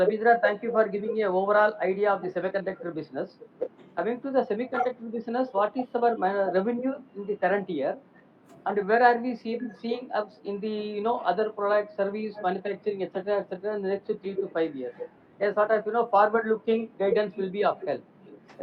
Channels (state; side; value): identical; both; correlation 1.00